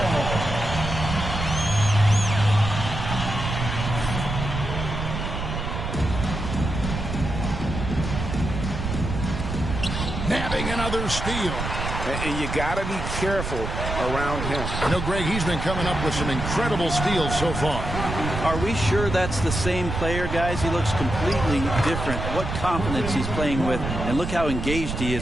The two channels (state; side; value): noise; right; rumble, 4 dB below the sound